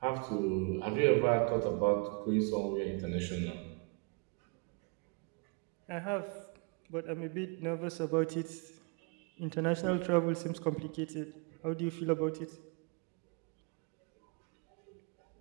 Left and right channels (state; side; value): quieter; left; 32.8 dB